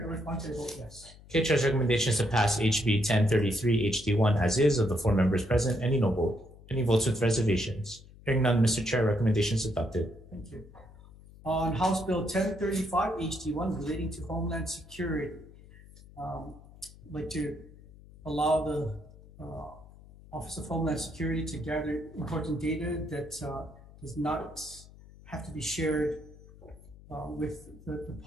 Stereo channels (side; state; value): left; noise; hum, 21 dB below the sound